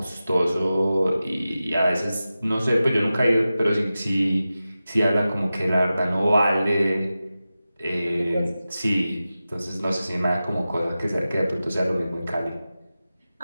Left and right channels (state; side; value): inverted; both; correlation -0.94